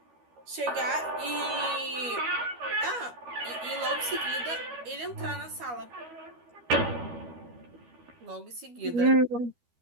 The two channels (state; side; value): late; left; 12 ms